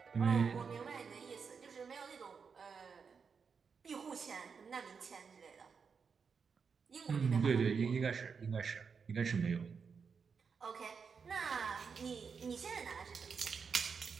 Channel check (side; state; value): left; quieter; 5.8 dB